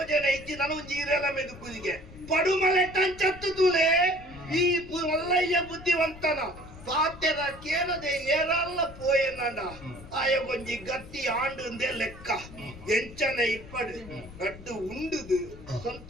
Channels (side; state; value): left; noise; rumble, 17 dB below the sound